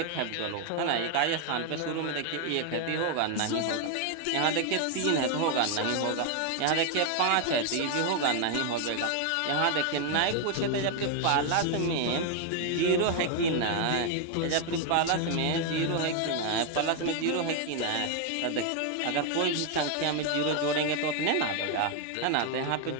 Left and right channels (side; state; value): both; different; correlation 0.01